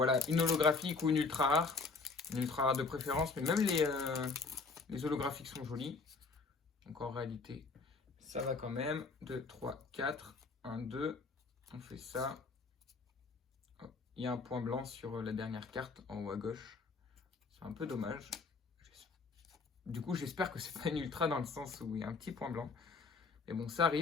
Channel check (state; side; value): quieter; right; 4.3 dB